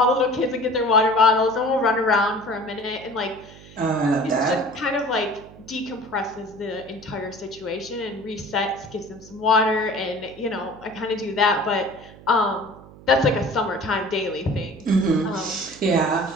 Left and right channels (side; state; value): right; noise; hum, 20 dB below the sound